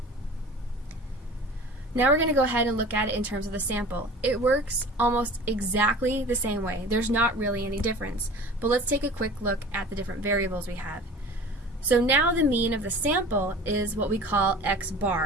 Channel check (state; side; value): normal; both; correlation 0.40